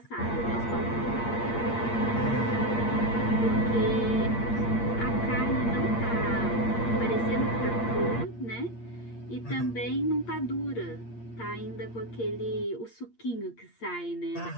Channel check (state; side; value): late; right; 8.6 ms